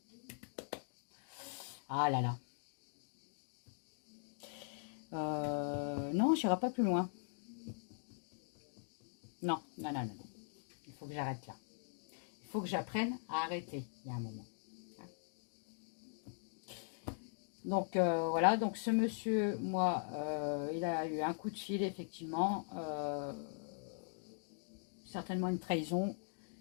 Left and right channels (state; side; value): silent; right; digital silence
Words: Ah là là. Non, j'irai pas plus loin. Non, non, non, non. Il faut que j'arrête là. Il faut que j'apprenne à arrêter. Il y a un moment. Donc voilà, donc ce monsieur, moi, il a eu un coup de fil, effectivement. Certainement une trahison,